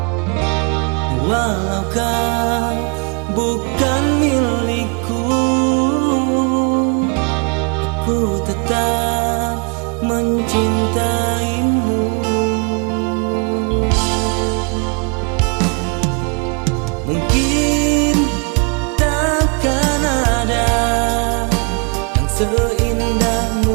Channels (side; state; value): left; quieter; 35.3 dB